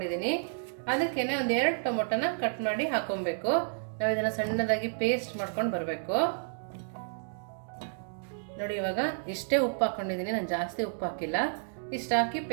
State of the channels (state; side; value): silent; left; digital silence